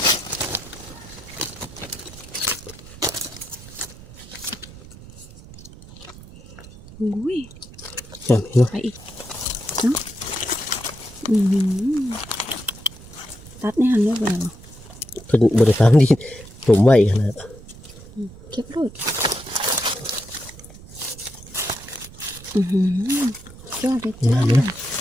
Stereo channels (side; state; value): right; noise; rumble, 18 dB below the sound